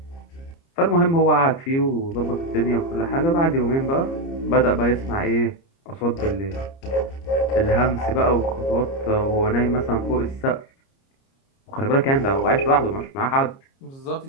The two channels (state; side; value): late; right; 30 ms